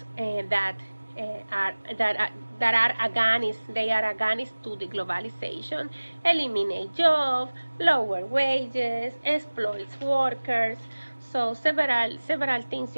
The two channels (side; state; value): both; inverted; correlation -1.00